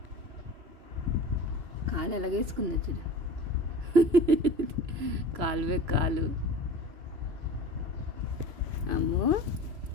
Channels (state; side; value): late; left; 3.0 ms